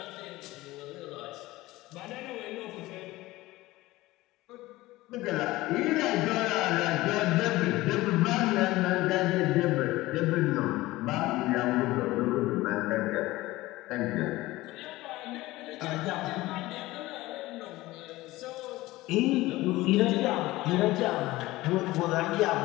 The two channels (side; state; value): right; quieter; 18.5 dB